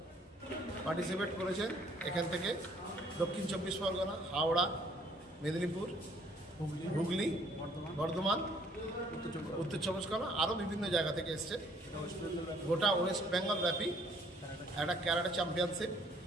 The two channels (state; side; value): normal; both; correlation 0.61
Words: পার্টিসিপেট করেছেন এখান থেকে দক্ষিণ 24 পরগনা, হাওড়া, মেদিনীপুর, হুগলি, বর্ধমান, উত্তর 24 পরগনা, আরও বিভিন্ন জায়গা থেকে এসছে। গোটা ওয়েস্ট বেঙ্গল ব্যাপী একটা ক্যারাটে চ্যাম্পিয়নশিপ